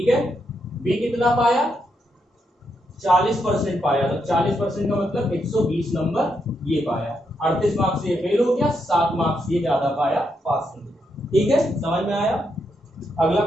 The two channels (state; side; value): normal; both; correlation 0.80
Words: है। बी कितना पाया, 40% पाया, तो 40% का मतलब 120 नंबर ये पाया। 38 मार्क्स ये फेल हो गया, 7 मार्क्स ये ज्यादा पाया, पास हो गया, ठीक है, समझ में आया। अगला